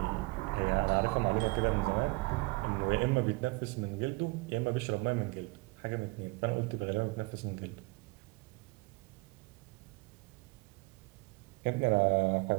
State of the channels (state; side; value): quieter; left; 25.3 dB